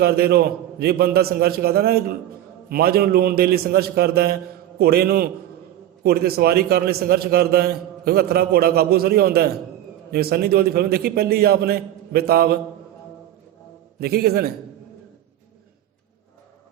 ਰਹੋ। ਜੇ ਬੰਦਾ ਸੰਘਰਸ਼ ਕਰਦਾ ਨਾ, ਮੱਝ ਨੂੰ ਲੂਣ ਦੇ ਲਈ ਸੰਘਰਸ਼ ਕਰਦਾ ਹੈ, ਘੋੜੇ 'ਤੇ ਸਵਾਰੀ ਕਰਨ ਲਈ ਸੰਘਰਸ਼ ਕਰਦਾ ਹੈ, ਕਿਉਂਕਿ ਹੱਥਰਾ ਘੋੜਾ ਕਾਬੂ ਥੋੜ੍ਹੀ ਆਉਂਦਾ ਹੈ। ਜਿਵੇਂ ਸੰਨੀ ਦਿਓਲ ਦੀ ਫਿਲਮ ਦੇਖੀ ਪਹਿਲੀ ਆਪ ਨੇ, ਬੇਤਾਬ, ਦੇਖੀ ਕਿਸੇ ਨੇ?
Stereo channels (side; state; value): left; quieter; 12.6 dB